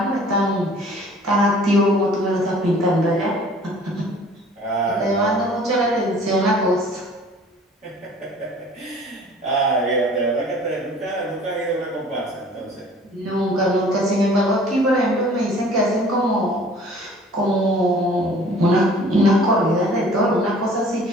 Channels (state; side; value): normal; both; correlation 0.51